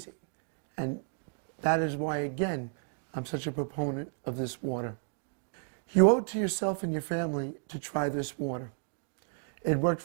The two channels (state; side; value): silent; left; digital silence